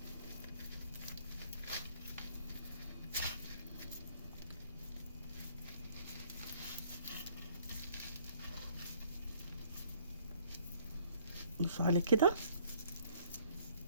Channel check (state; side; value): inverted; both; correlation -0.61